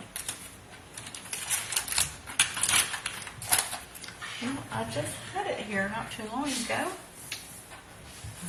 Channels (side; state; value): both; identical; correlation 1.00